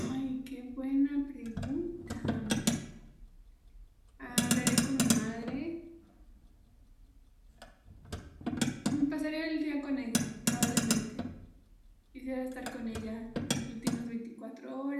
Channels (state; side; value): identical; both; correlation 1.00